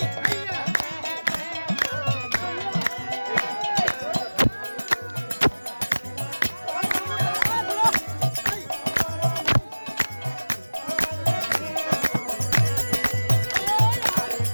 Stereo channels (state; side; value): inverted; both; correlation -1.00